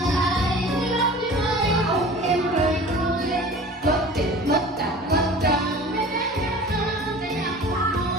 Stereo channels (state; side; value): normal; both; correlation 0.41